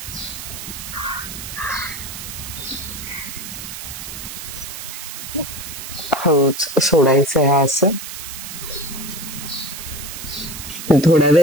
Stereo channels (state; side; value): noise; right; hiss, 9 dB below the sound